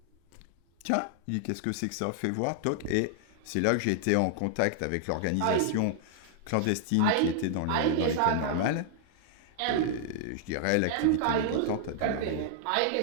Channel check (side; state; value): both; different; correlation -0.01